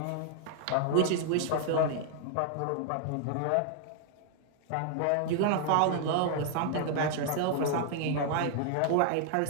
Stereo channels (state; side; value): different; both; correlation 0.00